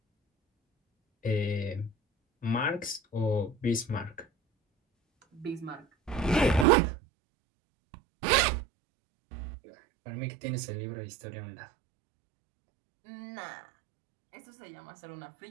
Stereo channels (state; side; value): drops out; left; at 6.7 s